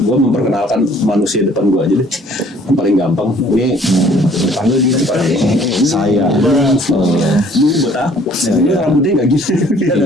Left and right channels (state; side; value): normal; both; correlation 0.57